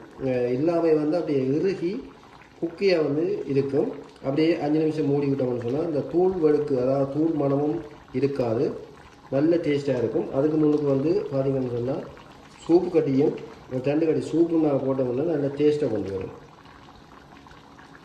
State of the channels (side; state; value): both; identical; correlation 1.00